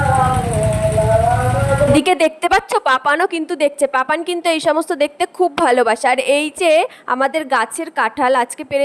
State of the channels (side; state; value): both; identical; correlation 1.00